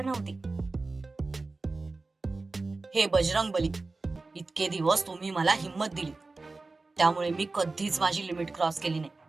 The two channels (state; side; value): quieter; left; 3.6 dB